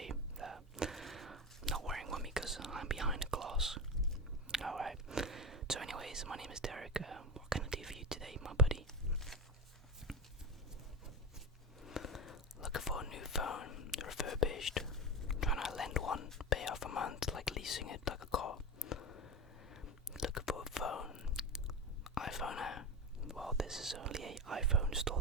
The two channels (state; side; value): normal; both; correlation 0.23